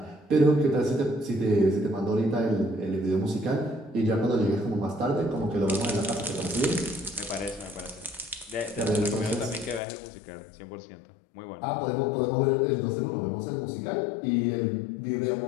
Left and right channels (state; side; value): drops out; right; at 9.8 s